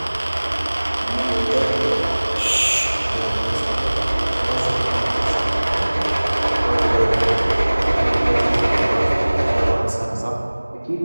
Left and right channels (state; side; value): inverted; both; correlation -1.00